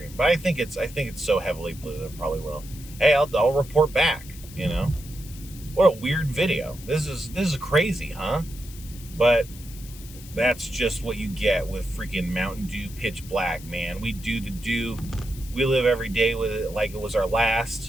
But I think it's so heavily blue that it probably will. Hey, I'll report back. What a weird video. This is crazy, huh? But that's just what you get with freaking Mountain Dew Pitch Black, man. We do the dew. We live every day with it like it was our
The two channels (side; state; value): left; noise; hiss, 18 dB below the sound